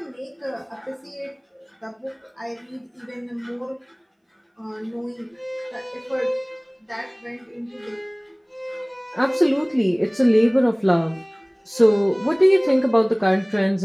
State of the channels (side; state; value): both; identical; correlation 1.00